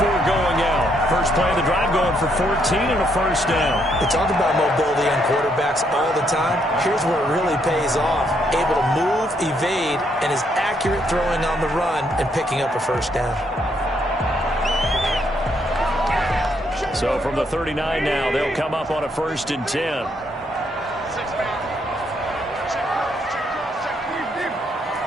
going out. First play of the drive going for 14 and a first down. We talk about mobility on quarterbacks all the time. Here's where it really pays off. Able to move, evade, and is accurate throwing on the run and picking up a first down. So from the 39 now, they'll come up on a 1st and 10.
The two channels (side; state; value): both; normal; correlation 0.73